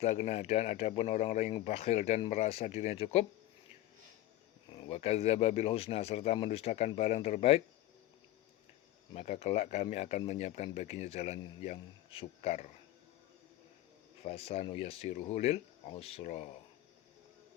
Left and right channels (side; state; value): right; quieter; 14.9 dB